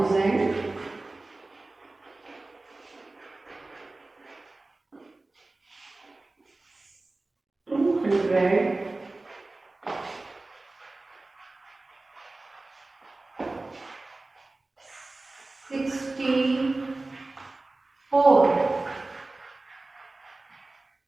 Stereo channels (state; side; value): quieter; left; 3.1 dB